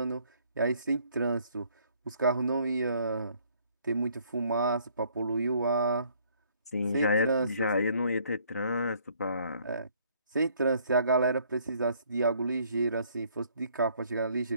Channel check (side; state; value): both; inverted; correlation -0.63